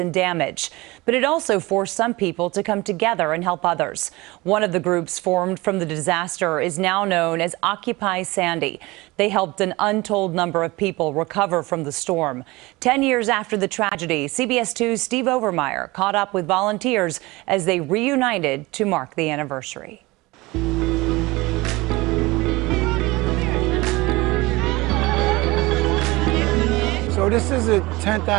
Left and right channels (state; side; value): quieter; left; 21.9 dB